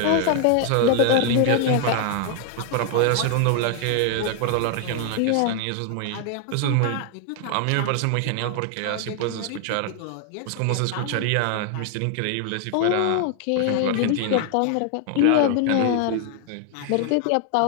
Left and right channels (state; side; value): different; both; correlation 0.00